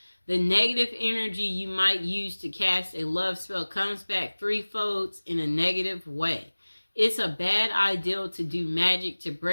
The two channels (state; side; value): inverted; both; correlation -1.00